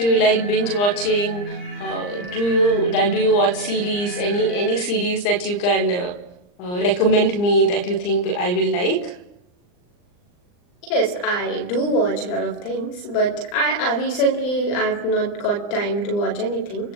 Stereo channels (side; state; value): right; late; 39 ms